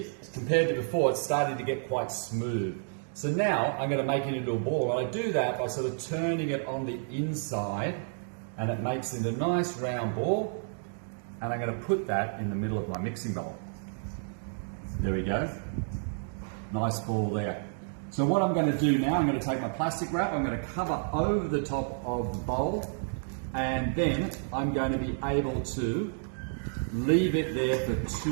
compared to before, it's starting to get quite smooth. So now I'm going to make it into a ball. And I do that by sort of turning it on the inside, and it makes it a nice round ball. And I'm going to put that in the middle of my mixing bowl. There we go. Nice ball there. So what I'm going to do now, I'm going to take my plastic wrap, I'm going to cover over the top of the bowl, and then I'm going to be able to leave it there for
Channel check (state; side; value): silent; left; digital silence